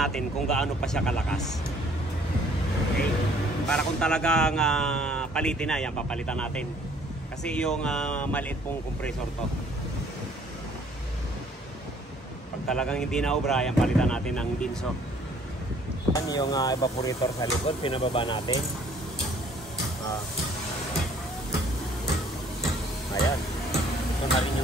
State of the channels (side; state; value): both; normal; correlation 0.59